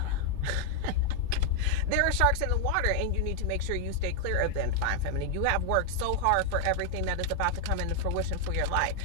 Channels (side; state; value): both; different; correlation 0.00